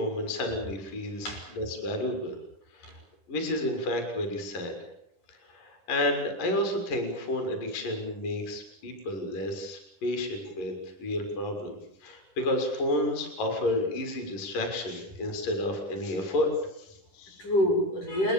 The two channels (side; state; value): right; late; 11 ms